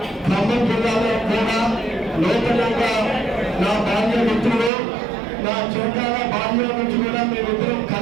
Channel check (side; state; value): left; drops out; at 4.7 s